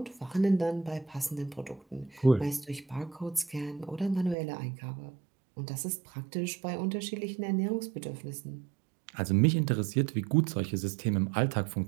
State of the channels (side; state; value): left; drops out; at 4.4 s